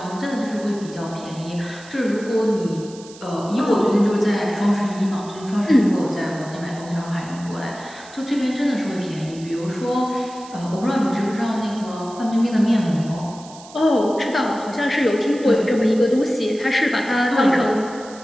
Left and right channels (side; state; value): right; noise; hiss, 20 dB below the sound